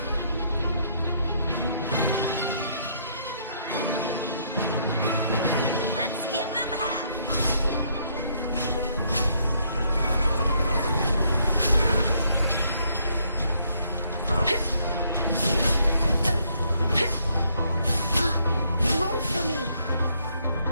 Let's give them half. Roll for me.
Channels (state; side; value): inverted; both; correlation -0.70